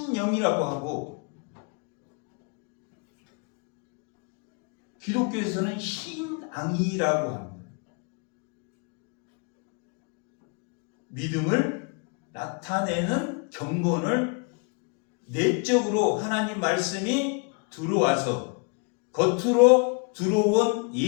하고 기독교에서는 신앙이라고 합니다. 믿음을 나타내는 경건을 내적으로 하나님 말씀이 들어와서 겉으로 들어온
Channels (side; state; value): right; quieter; 36.1 dB